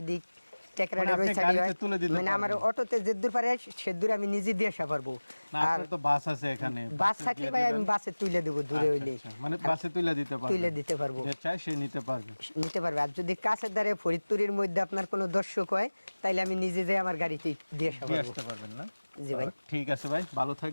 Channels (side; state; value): both; inverted; correlation -1.00